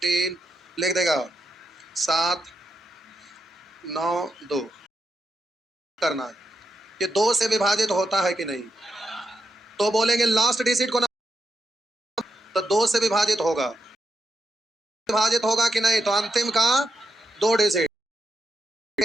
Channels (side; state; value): both; normal; correlation 0.84